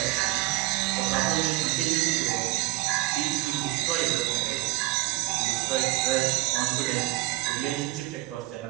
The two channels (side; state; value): left; quieter; 20.2 dB